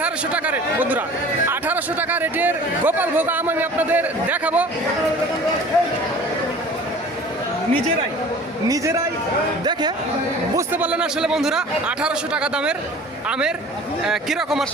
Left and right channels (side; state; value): both; normal; correlation 0.44